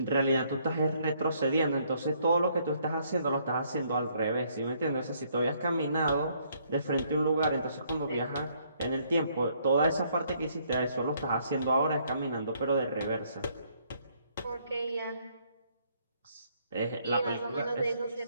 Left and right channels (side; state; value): both; inverted; correlation -0.68